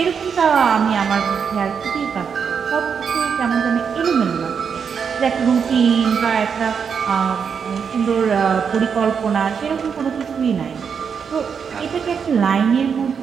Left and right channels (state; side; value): quieter; left; 6.6 dB